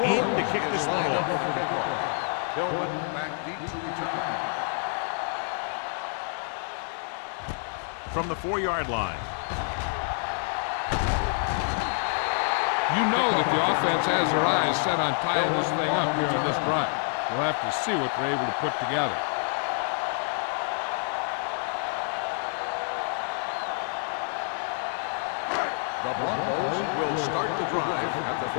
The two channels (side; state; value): right; silent; 56 dB below the other